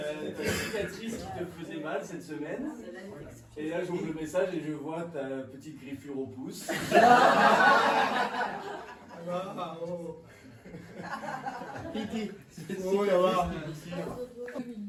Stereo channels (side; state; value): both; identical; correlation 1.00